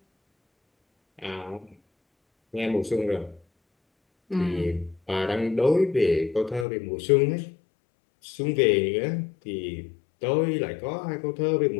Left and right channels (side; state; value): right; drops out; at 6.7 s